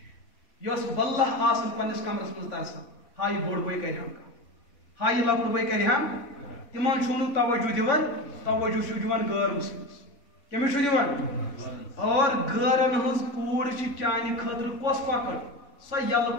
یۄس واللہ آسان پننِس کمرس منٛز ترسان ہا یہِ بوٚڑ بٲے کرِ ہم کانٛہہ ہا یہِ لۄکُٹ بٲے کرِ ہم تِمن چھُو نہٕ توجہ دِوان توجہ چھُو دِوان غٲر مسلمس کٔمِس چھُو دِوان اور غٲرن ہٕنٛز کوٗر چھِ چانہِ خٲطرٕ کۄس کۄکر سۄ یلہٕ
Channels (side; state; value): right; late; 3.5 ms